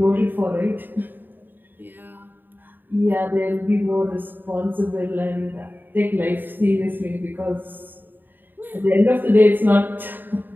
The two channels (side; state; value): left; late; 0.092 ms